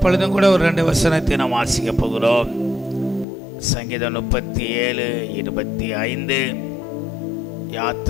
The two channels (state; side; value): drops out; right; at 3.2 s